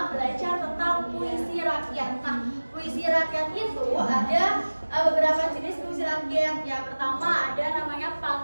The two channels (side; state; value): both; inverted; correlation -1.00